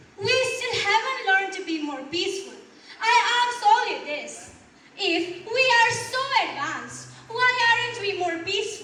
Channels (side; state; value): both; identical; correlation 1.00